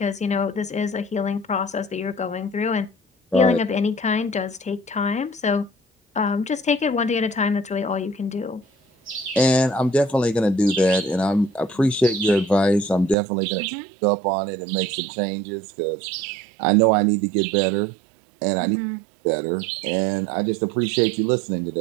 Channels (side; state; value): left; drops out; at 13.2 s